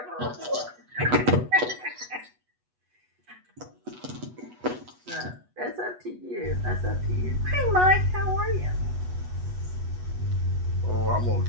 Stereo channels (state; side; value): late; left; 8.2 ms